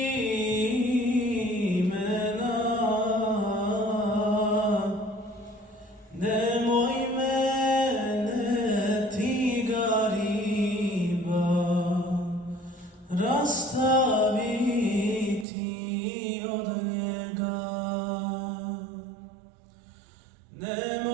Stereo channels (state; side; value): drops out; left; at 15.5 s